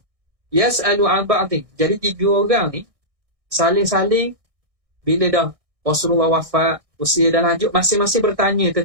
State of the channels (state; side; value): late; left; 1.6 ms